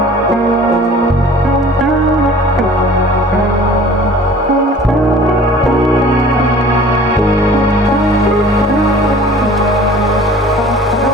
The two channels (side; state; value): both; normal; correlation 0.47